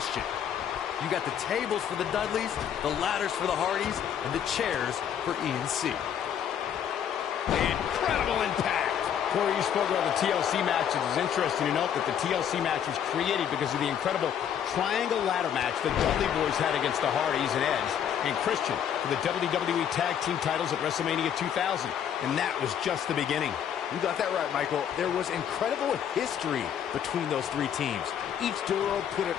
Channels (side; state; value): right; quieter; 9.0 dB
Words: You got the tables for the Dudleys, the ladders for the Hardys, and the chairs for E&C. Incredible impact! Corey, you spoke about the TLC matches. It's interesting to note that the TLC match was created because of the incredible triangle ladder match the Dudley Boys had against the Hardys and Edge and Christian for the WWE Tag Team titles at WrestleMania 2000. And that was just the beginning. You got that right, Michael. There was incredible history between those three teams. Each duo put it